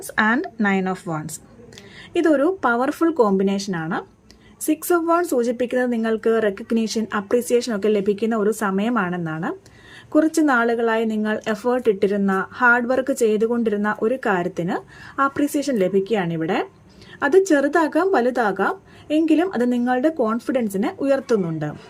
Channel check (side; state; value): both; identical; correlation 1.00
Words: and 9 of wants. ഇതൊരു പവർഫുൾ കോമ്പിനേഷനാണ്. 6 ഓഫ് വാണ്ട്സ് സൂചിപ്പിക്കുന്നത് നിങ്ങൾക്ക് റെക്കഗ്നീഷൻ, അപ്രീസിയേഷൻ ഒക്കെ ലഭിക്കുന്ന ഒരു സമയമാണെന്നാണ്. കുറച്ച് നാളുകളായി നിങ്ങൾ എഫേർട്ട് ഇട്ടിരുന്ന, ഹാർഡ് വർക്ക് ചെയ്തുകൊണ്ടിരുന്ന ഒരു കാര്യത്തിന് അപ്രീസിയേഷൻ ലഭിക്കുകയാണിവിടെ. അത് ചെറുതാകാം വലുതാകാം, എങ്കിലും അത് നിങ്ങളുടെ കോൺഫിഡൻസിനെ ഉയർത്തുന്നുണ്ട്.